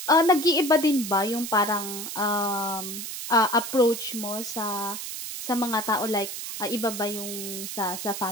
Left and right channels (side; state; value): right; noise; hiss, 7 dB below the sound